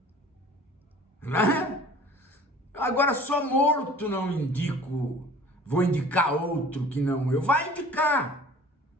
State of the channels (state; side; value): normal; both; correlation 0.47